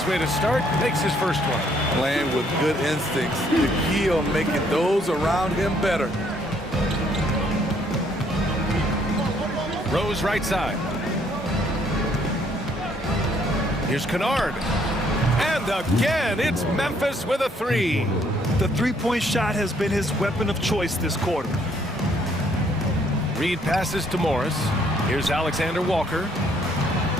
way to start. Makes his first one. Playing with good instincts. The key on making those around him better. Rose right side. Here's Kennard. And again, it's Memphis with a 3. The three-point shot has been his weapon of choice this quarter. Reed passes to Morris. Here's Alexander Walker.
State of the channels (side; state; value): both; normal; correlation 0.66